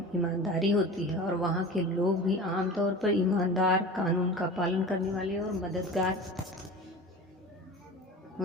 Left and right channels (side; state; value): both; normal; correlation 0.34